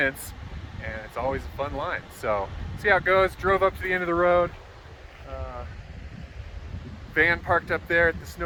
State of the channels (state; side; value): identical; both; correlation 1.00